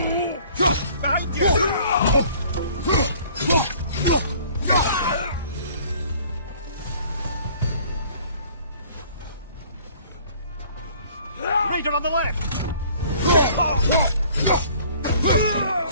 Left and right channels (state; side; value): inverted; both; correlation -0.54